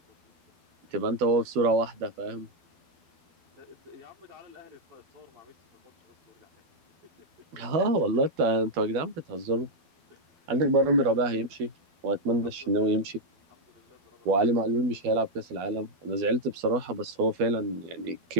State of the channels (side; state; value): left; late; 12 ms